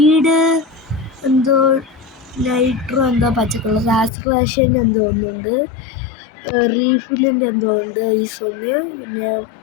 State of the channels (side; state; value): right; drops out; at 4.1 s